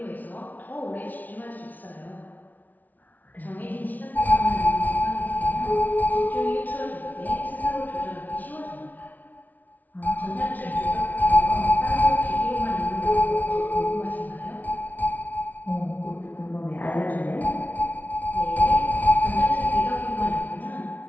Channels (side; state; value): right; late; 0.078 ms